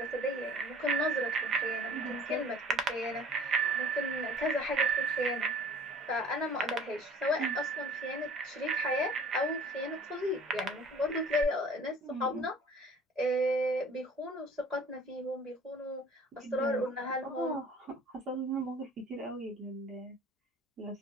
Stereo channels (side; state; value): both; normal; correlation 0.49